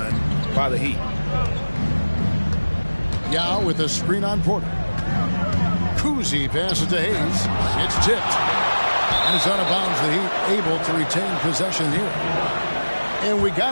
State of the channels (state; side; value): inverted; both; correlation -1.00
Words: by the Heat. Yao with a screen on Porter. Kuzi passes to Hayes. It's tipped. And it's out of bounds. The Heat able to retain possession here. And we got